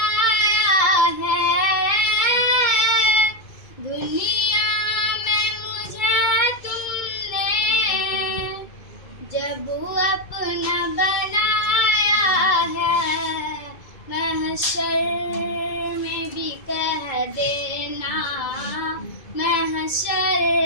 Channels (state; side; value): late; right; 2.2 ms